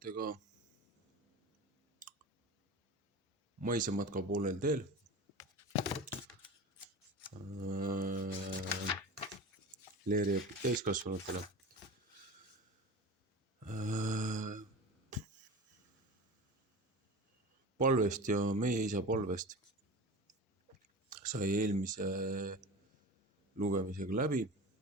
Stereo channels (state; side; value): normal; both; correlation 0.32